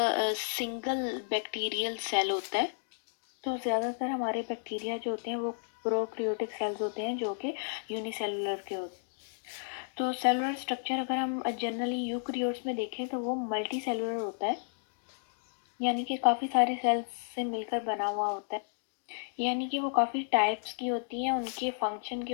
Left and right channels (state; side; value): silent; right; digital silence